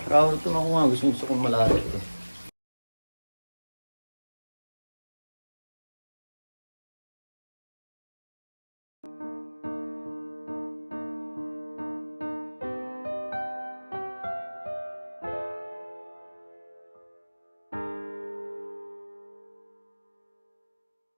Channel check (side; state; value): both; inverted; correlation -1.00